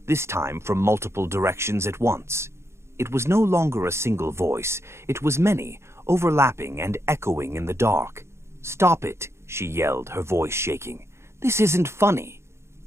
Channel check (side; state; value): left; late; 0.13 ms